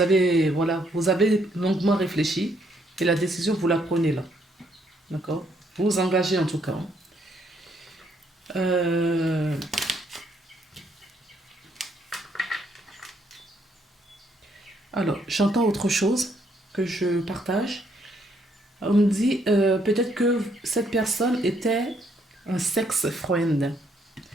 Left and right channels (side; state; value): both; normal; correlation 0.71